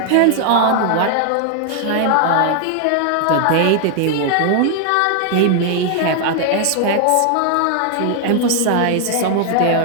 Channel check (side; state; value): both; different; correlation 0.00